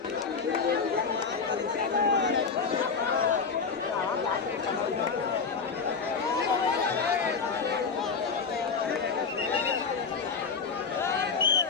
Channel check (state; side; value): quieter; right; 5.3 dB